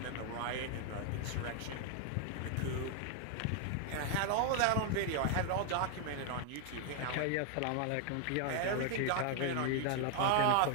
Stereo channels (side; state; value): both; different; correlation 0.00